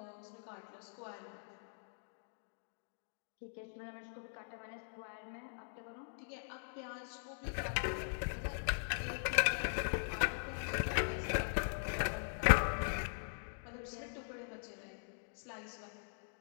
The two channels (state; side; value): silent; right; digital silence